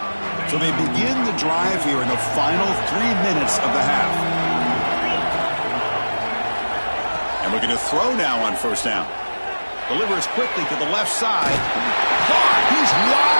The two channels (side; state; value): both; inverted; correlation -1.00